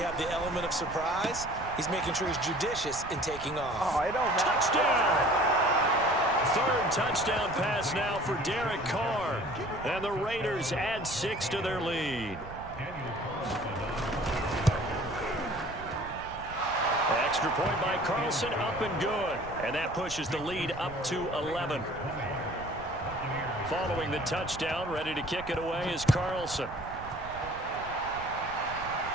the element of surprise, he's making sure he's judicious in taking off. Oh, it don't matter. Touchdown! 3rd touchdown pass now for Derek Carr. And the Raiders add 6 to their lead. Extra point by Carlson, up and good. And that pushes the lead up to 11. Following the touchdown, ready to kick it away is Carlson.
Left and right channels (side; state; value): right; noise; rumble, 14 dB below the sound